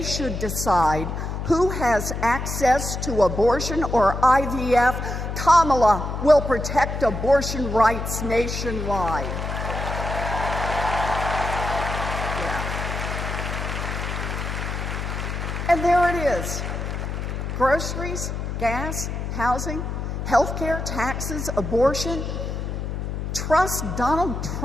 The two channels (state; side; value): noise; left; hum, 4 dB below the sound